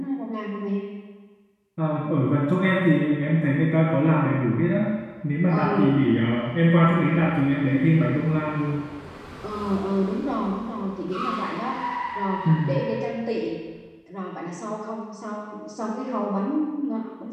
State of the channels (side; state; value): both; identical; correlation 1.00